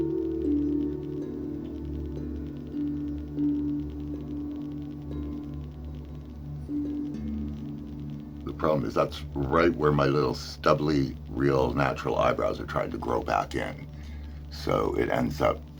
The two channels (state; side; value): noise; left; rumble, 28 dB below the sound